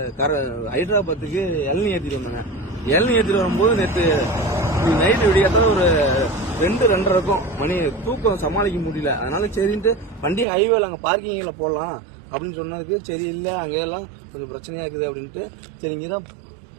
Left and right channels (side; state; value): left; drops out; at 10.5 s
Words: ஹைதராபாத்துக்கு இளநீ ஏற்றிட்டு வந்தாங்க. இளநீ ஏற்றிட்டு வரும்போது நேற்று நைட்டு விடியாத ஒரு 2:30 இருக்கும் மணி. தூக்கம் சமாளிக்க முடியல. அதனால சரின்ட்டு வண்டி ஹைவேல அங்கே பார்க்கிங்கில் போடலாம் அப்படின்னு சொன்னதுக்கு சரி இல்லை அங்கெல்லாம் கொஞ்சம் பிரச்சனையா இருக்குது அப்படின்ட்டு சரி இங்கே தான்